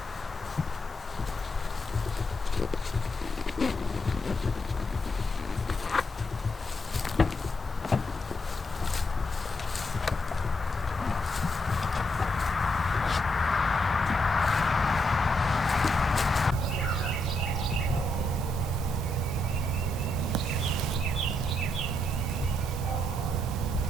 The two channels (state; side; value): normal; both; correlation 0.80